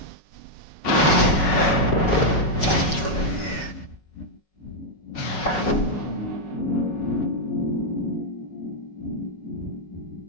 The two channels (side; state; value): right; late; 5.4 ms